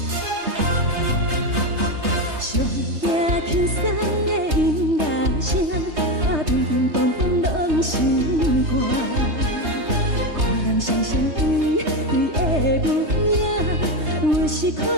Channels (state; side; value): late; left; 3.3 ms